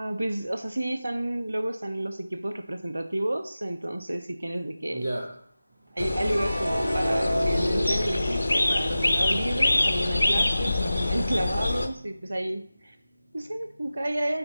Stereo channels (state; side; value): inverted; both; correlation -0.95